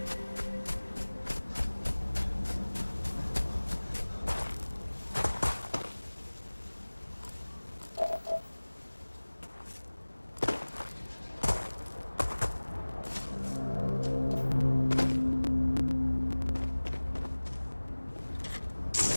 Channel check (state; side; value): inverted; both; correlation -1.00